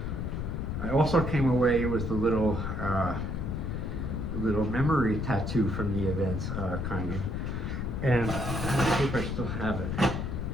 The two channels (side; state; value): left; noise; rumble, 2 dB below the sound